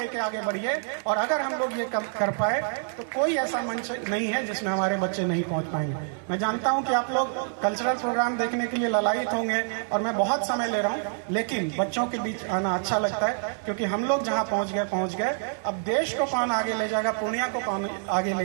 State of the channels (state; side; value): silent; left; 60 dB below the other